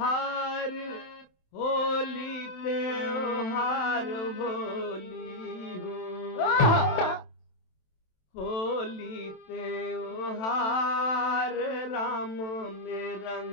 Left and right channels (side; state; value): right; late; 27 ms